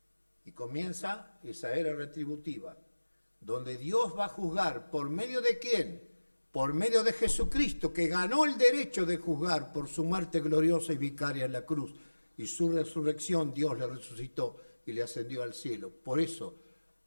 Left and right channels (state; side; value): inverted; both; correlation -1.00